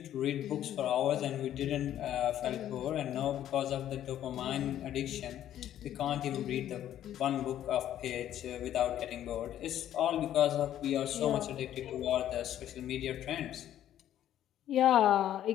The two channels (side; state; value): right; quieter; 11.6 dB